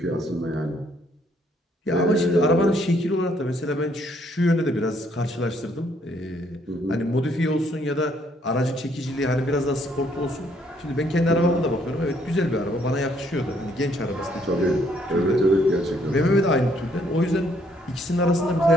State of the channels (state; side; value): normal; both; correlation 0.68